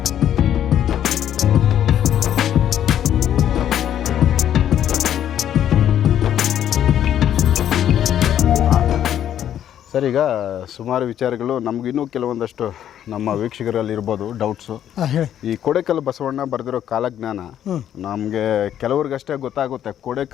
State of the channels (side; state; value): right; quieter; 10.4 dB